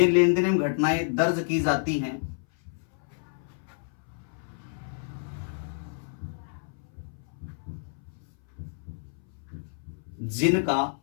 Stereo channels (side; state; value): right; silent; 59 dB below the other